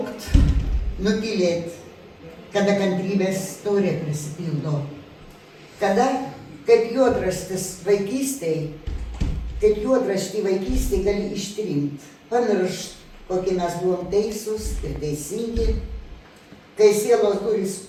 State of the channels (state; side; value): identical; both; correlation 1.00